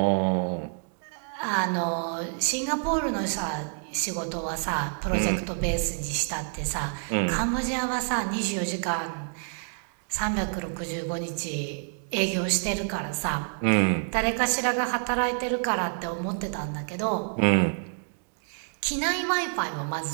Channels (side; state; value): left; silent; 59 dB below the other